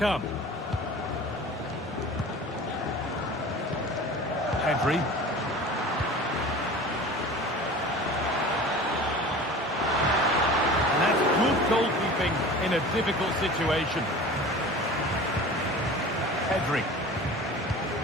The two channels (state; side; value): normal; both; correlation 0.39